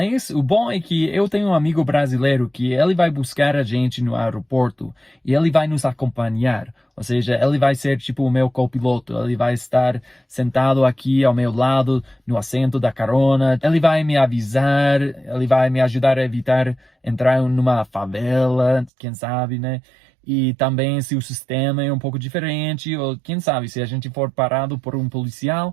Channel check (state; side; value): drops out; left; at 18.9 s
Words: o bom é que eu tenho um amigo brasileiro que ele vai buscar a gente no aeroporto e ele vai nos acompanhar. Ou seja, ele vai ser tipo o meu copiloto. Ele vai estar sentado aqui ao meu lado, no assento da carona. Ele vai me avisar, ele vai me ajudar a evitar entrar numa favela, quem sabe, né? E também se o sistema é um pouco diferente, ou quem sabe, se a gente for parado por um policial,